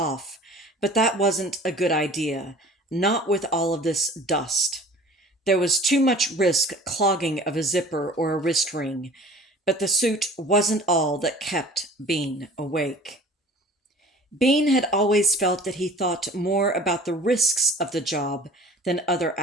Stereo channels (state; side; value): normal; both; correlation 0.45